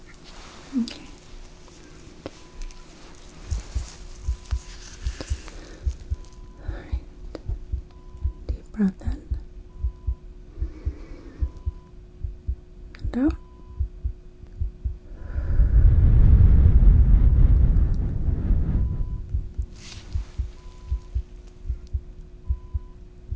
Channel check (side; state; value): both; identical; correlation 1.00